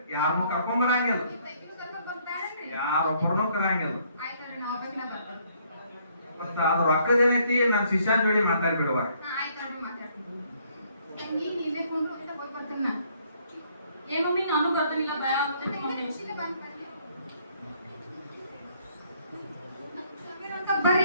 ಯಾರನ್ನೂ ಕರ್ಕೊಂಡ್ ಬರಂಗಿಲ್ಲ. ನೀವು ತೆಗಿದು ಕರ್ಕೊಂಡ್ ಬಂದ್ಬಿಟ್ಟಾರೇನ್ರಿ? ಯಾರೊಬ್ಬರನ್ನೂ ಕರಂಗಿಲ್ಲ. ಆಯ್ತಲ್ರಿ, ನಾ ಒಬ್ಬಾಕಿನ ಬರ್ತೀನಿ. ಮತ್ತ ಅದ್ರ ರೊಕ್ಕದೇನೈತಿ ನನ್ ಶಿಷ್ಯನ ಜೋಡಿ ಮಾತಾಡ್ಬಿಡುವ. ಹಾ, ಆಯ್ತಲ್ರಿ, ಮಾತಾಡ್ತೀನಿ. ತಂಗಿ ನೀವೇ ಕುಂಡ್ರು ಅಂತ ಹೋಗಿ ಬರ್ತೀನಿ ನಾ. ಏ ಮಮ್ಮಿ ನಾನು ಬರ್ತಿಲ್ಲ, ಭಯ ಆಗ್ತೈತಿ ಮಮ್ಮಿ. ಖುಷಿಲೇ ಬಂದ್ ಬರ್ರಿ. ಬರ್ರಿ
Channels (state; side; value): inverted; both; correlation -0.66